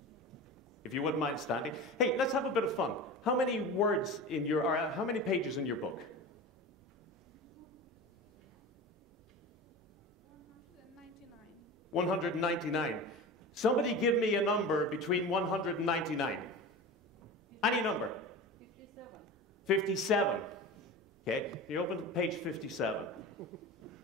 If you wouldn't mind standing. Hey, let's have a bit of fun. How many words in your, or how many pages in your book? 199. Somebody give me a number between 199. Any number? 57. 57. Okay, you open to page 57.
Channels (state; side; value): normal; both; correlation 0.31